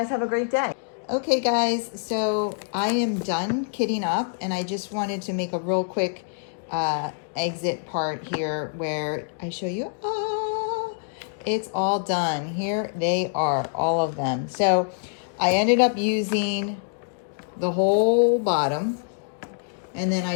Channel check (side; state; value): right; silent; digital silence